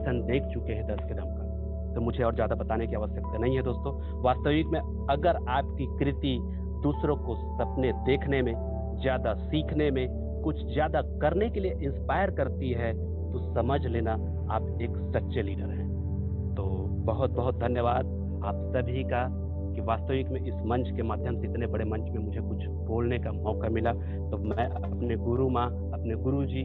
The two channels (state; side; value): identical; both; correlation 1.00